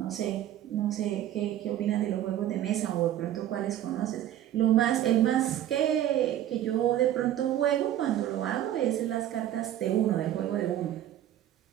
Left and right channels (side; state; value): left; quieter; 12.1 dB